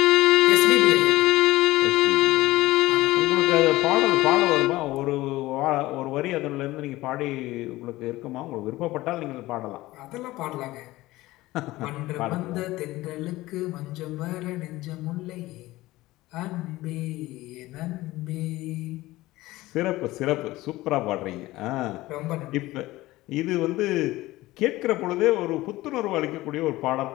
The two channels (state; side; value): quieter; right; 18.1 dB